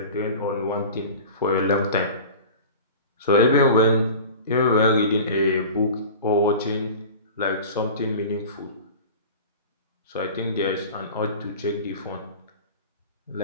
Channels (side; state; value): both; inverted; correlation -0.37